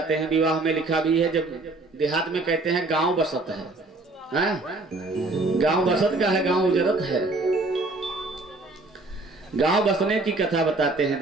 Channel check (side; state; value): left; quieter; 3.1 dB